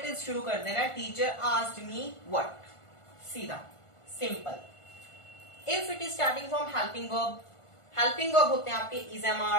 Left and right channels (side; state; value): right; late; 1.5 ms